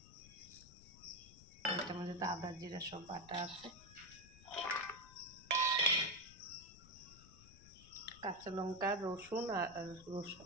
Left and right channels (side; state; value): left; noise; rumble, 20 dB below the sound